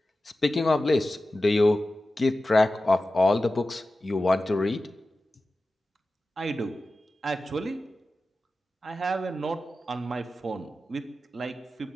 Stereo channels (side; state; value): both; normal; correlation 0.94